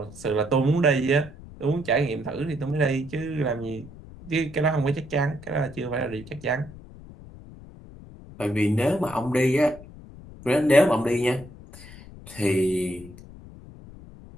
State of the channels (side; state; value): left; noise; rumble, 18 dB below the sound